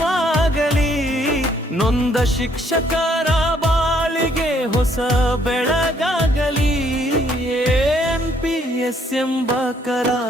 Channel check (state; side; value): normal; both; correlation 0.67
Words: ನೊಂದ ಶಿಕ್ಷಕರ ಬಾಳಿಗೆ ಹೊಸ ಬೆಳಗಾಗಲಿ NPS ಎಂಬ